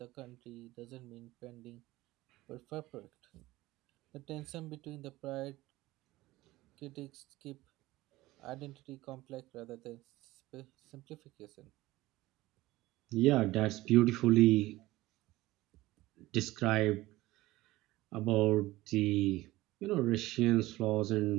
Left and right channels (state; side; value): quieter; left; 18.2 dB